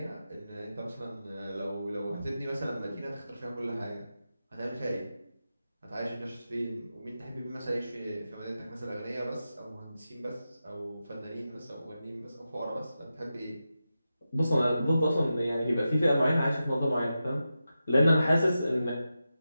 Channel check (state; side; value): inverted; both; correlation -0.91